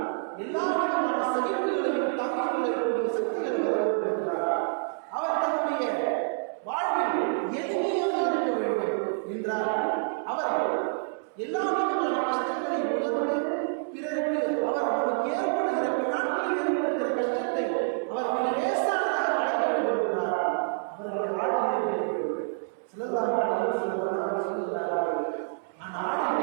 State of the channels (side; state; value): left; silent; 59 dB below the other